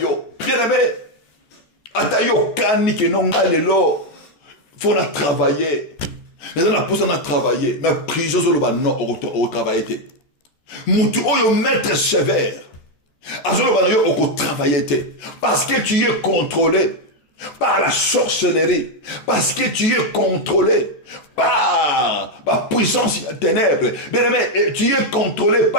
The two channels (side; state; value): right; late; 14 ms